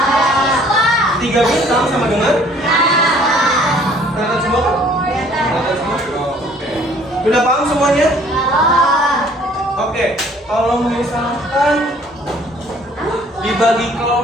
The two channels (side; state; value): both; normal; correlation 0.57